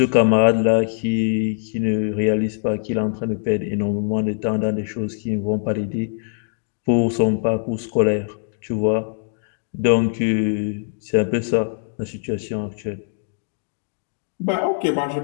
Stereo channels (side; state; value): right; silent; digital silence